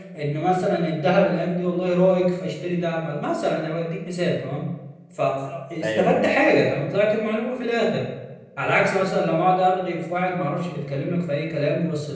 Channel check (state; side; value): identical; both; correlation 1.00